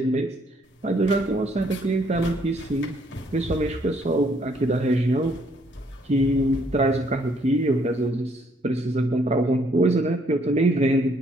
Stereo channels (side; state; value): both; normal; correlation 0.67